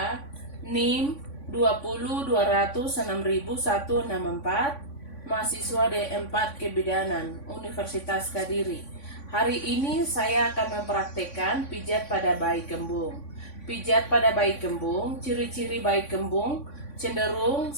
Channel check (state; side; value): late; right; 3.5 ms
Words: NIM 2020206164, mahasiswa D4 Kebidanan, Universitas Kediri. Hari ini saya akan mempraktekkan pijat pada bayi kembung. Pijat pada bayi kembung, ciri-ciri bayi kembung cenderung